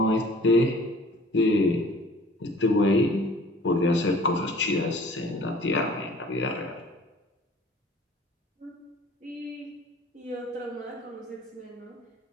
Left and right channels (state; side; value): normal; both; correlation 0.50